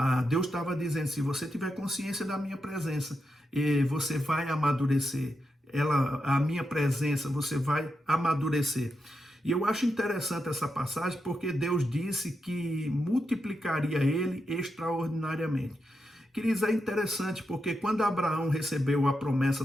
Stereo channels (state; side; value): normal; both; correlation 0.86